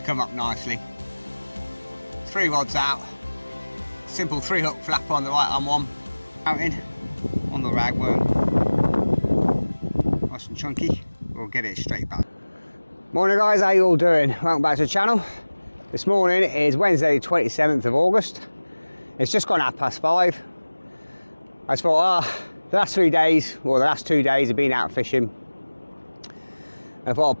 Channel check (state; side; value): inverted; both; correlation -1.00